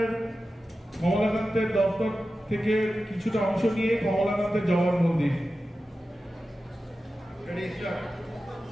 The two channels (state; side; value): normal; both; correlation 0.93